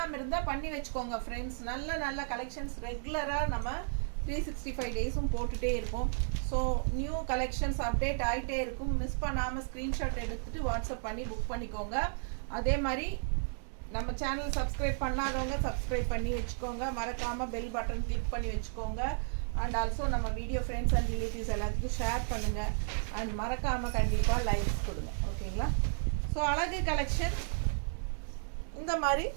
இருந்தால் பண்ணி வச்சுக்கோங்க ஃப்ரெண்ட்ஸ். நல்ல நல்ல கலெக்ஷன்ஸ் ரெகுலராக நம்ம 365 டேஸும் போட்டுகிட்டே இருப்போம். ஸோ நியூ கலெக்ஷன்ஸ் அப்டேட் ஆகிட்டே இருக்கும். மிஸ் பண்ணாமல் ஸ்க்ரீன்ஷாட் எடுத்துகிட்டு வாட்ஸ்அப் பண்ணி புக் பண்ணிக்கோங்க. அதே மாதிரி நம்ம சேனல் சப்ஸ்கிரைப் பண்ணாதவங்க சப்ஸ்கிரைப் பண்ணி வச்சுக்கோங்க. மறக்காமல் பெல் பட்டன் கிளிக் பண்ணி வச்சுக்கோங்க. அண்ட் ஆல்சோ நம்ம வீடியோ ஃப்ரெண்ட்ஸ் அண்ட் ரிலேட்டிவ்ஸ் எல்லாத்துக்கும் ஷேர் பண்ணுங்கள். அண்ட் மறக்காமல் கண்டிப்பாக லைக்ஸ் கொடுங்க, ஓகேங்களா. ஸோ அழகு கலெக்ஷன். இந்த மாதிரி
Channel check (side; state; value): left; silent; digital silence